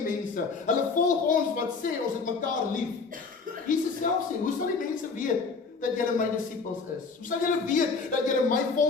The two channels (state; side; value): quieter; right; 4.6 dB